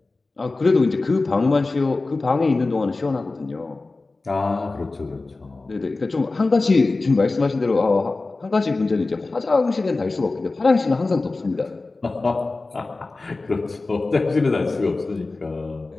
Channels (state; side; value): quieter; right; 3.4 dB